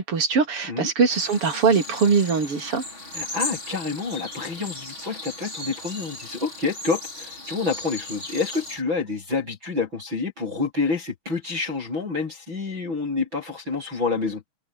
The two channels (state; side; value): late; left; 6.2 ms